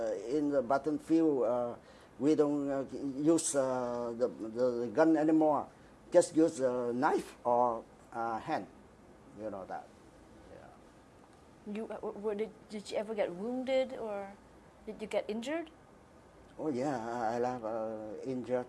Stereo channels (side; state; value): both; identical; correlation 1.00